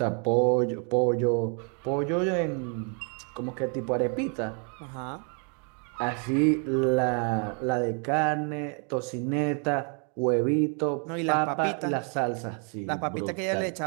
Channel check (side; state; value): left; quieter; 39.8 dB